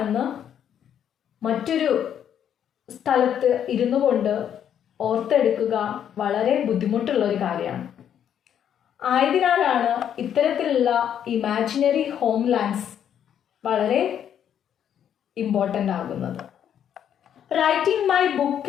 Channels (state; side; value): quieter; right; 9.3 dB